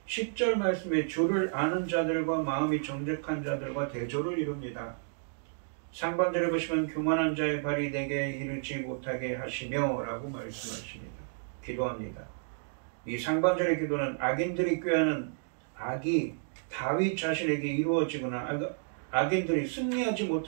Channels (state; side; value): silent; left; digital silence